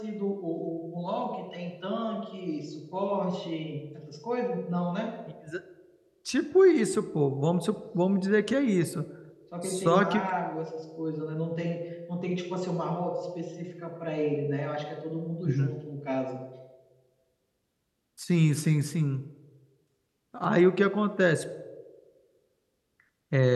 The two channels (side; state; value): both; identical; correlation 1.00